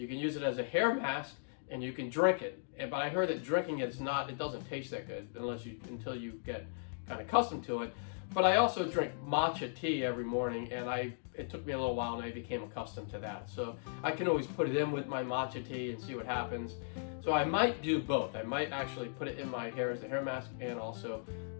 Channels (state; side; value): silent; right; digital silence